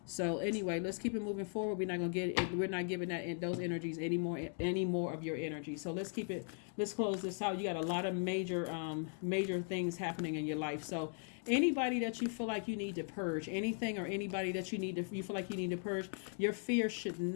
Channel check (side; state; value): right; silent; 52 dB below the other